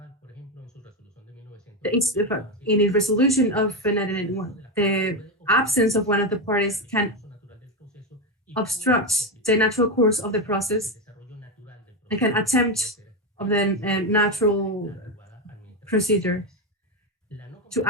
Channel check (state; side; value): normal; both; correlation 0.11